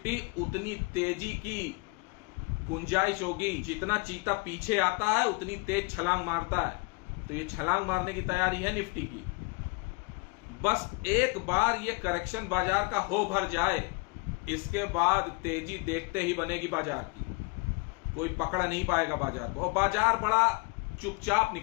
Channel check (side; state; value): right; quieter; 30.2 dB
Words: उतनी तेजी की गुंजाइश होगी। जितना चीता पीछे आता है उतनी तेज छलांग मारता है, तो ये छलांग मारने की तैयारी है निफ्टी की। बस एक बार ये करेक्शन बाजार का हो भर जाए, इसके बाद तेजी देखते ही बनेगी बाजार की, कोई पकड़ नहीं पाएगा बाजार को। और बाजार बड़ा चुपचाप